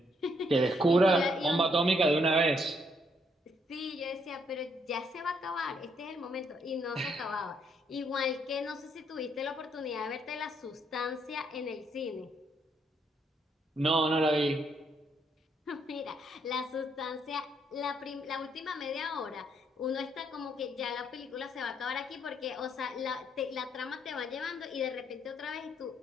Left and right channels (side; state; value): both; normal; correlation 0.73